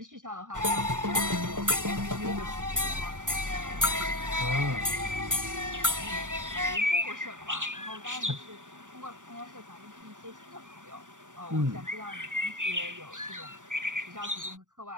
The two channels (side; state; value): left; late; 0.87 ms